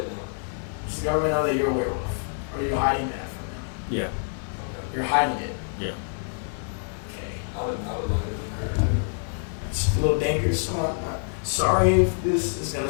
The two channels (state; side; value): silent; right; digital silence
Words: Does the government know that you're a werewolf? Or are you hiding that from them? Yeah, Okay. You're hiding it. yeah. Okay. I would like it. It's a little dangerous. Sorry if this is gonna